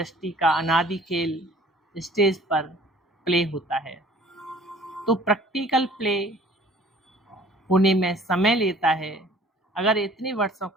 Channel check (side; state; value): both; normal; correlation 0.52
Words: का अनादि खेल स्टेज पर प्ले होता है, तो प्रैक्टिकल प्ले होने में समय लेता है। अगर इतने वर्षों